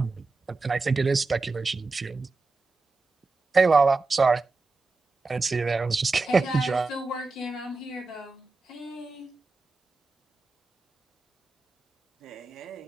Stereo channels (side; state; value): left; quieter; 3.7 dB